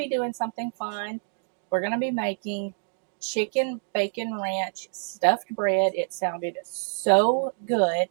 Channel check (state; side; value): silent; left; digital silence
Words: doing something fun. We're going to be making chicken bacon ranch stuffed bread. It sounded so good,